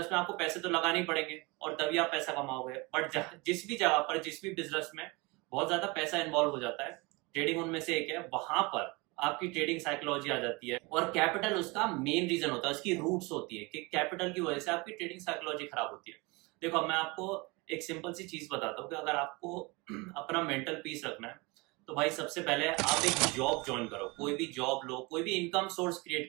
में आपको पैसे तो लगाने ही पड़ेंगे और तभी आप पैसा कमाओगे। बट जिस भी जगह पर, जिस भी बिजनेस में बहुत ज्यादा पैसा इन्वॉल्व हो जाता है, ट्रेडिंग उनमें से एक है, वहां पर आपकी ट्रेडिंग साइकोलॉजी आ जाती है। और कैपिटल उसका मेन रीजन होता है, उसकी रूट्स होती है कि कैपिटल की वजह से आपकी ट्रेडिंग साइकोलॉजी खराब होती है। देखो, मैं आपको एक सिंपल सी चीज बताता हूँ कि अगर आपको अपना मेंटल पीस रखना है तो भाई सबसे पहले आप एक जॉब ज्वाइन करो, कोई भी जॉब लो, कोई भी इनकम सोर्स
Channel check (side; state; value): left; quieter; 25.9 dB